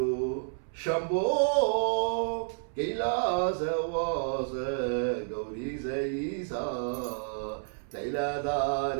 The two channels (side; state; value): left; silent; 58 dB below the other